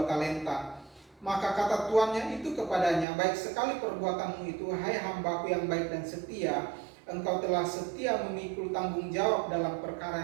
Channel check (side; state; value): left; drops out; at 3.1 s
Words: talenta. Maka kata tuannya itu kepadanya, baik sekali perbuatanmu itu, hai hambaku yang baik dan setia. Engkau telah setia memikul tanggung jawab dalam